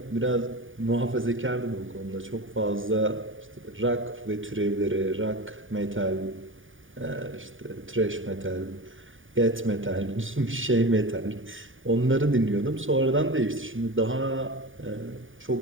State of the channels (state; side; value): late; left; 0.57 ms